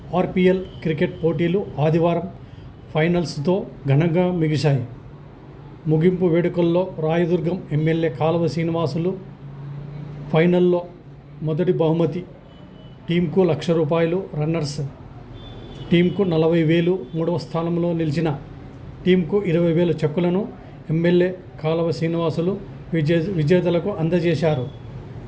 RPL cricket పోటీలు ఆదివారం ఫైనల్స్తో ఘనంగా ముగిశాయి. ముగింపు వేడుకల్లో రాయదుర్గం ఎమ్మెల్యే కాలువ శ్రీనివాసులు ఫైనల్లో మొదటి బహుమతి టీంకు ₹1,00,000, రన్నర్స్ టీంకు 40,000, మూడవ స్థానంలో నిలిచిన టీంకు 20,000 చెక్కులను ఎమ్మెల్యే కాలువ శ్రీనివాసులు విజేతలకు అందజేశారు.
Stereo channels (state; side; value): identical; both; correlation 1.00